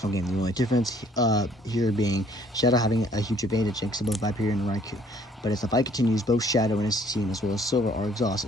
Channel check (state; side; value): normal; both; correlation 0.60